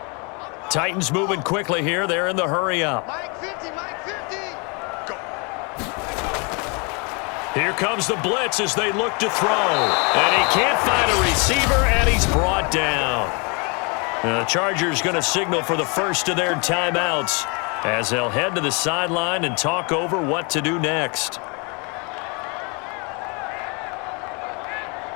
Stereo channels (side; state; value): right; quieter; 32.4 dB